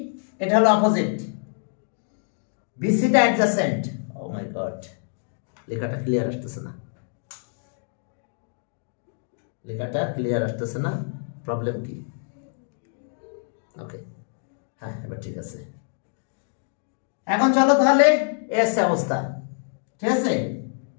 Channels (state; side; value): silent; right; 61 dB below the other